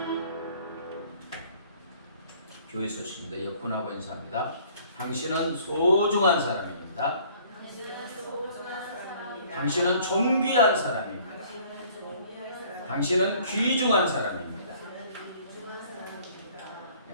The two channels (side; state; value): both; inverted; correlation -0.56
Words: 교회 소식입니다. 옆분하고 인사합니다. 당신은 소중한 사람입니다. 당신은 존귀한 사람입니다. 당신은 귀중한 사람입니다.